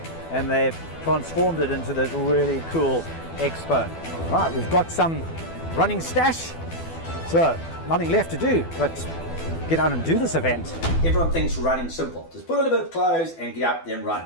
and they've transformed it into this really cool expo. Right, we've got some running stash, so nothing left to do but get out and do this event. Everyone thinks running simple. Just put on a bit of clothes and get up then run.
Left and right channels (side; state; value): right; late; 12 ms